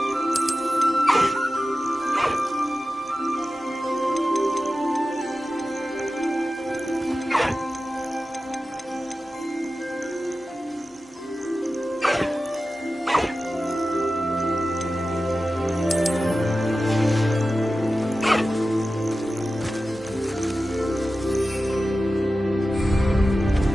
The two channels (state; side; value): normal; both; correlation 0.94